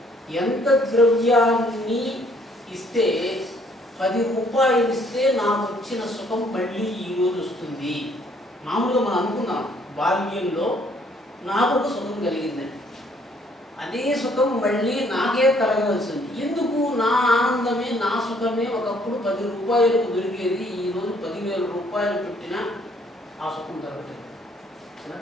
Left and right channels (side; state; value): both; normal; correlation 0.64